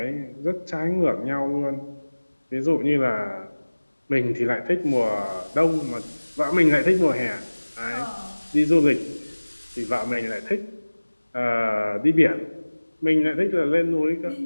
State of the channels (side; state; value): both; inverted; correlation -1.00